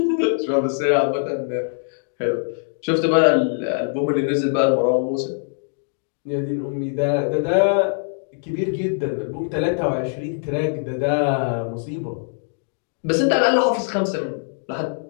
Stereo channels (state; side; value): silent; right; digital silence